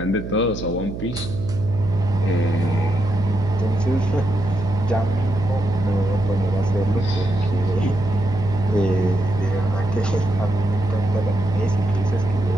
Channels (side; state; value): right; noise; hum, 8 dB below the sound